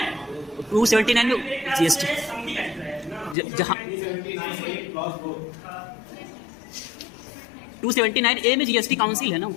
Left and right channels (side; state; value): right; drops out; at 3.4 s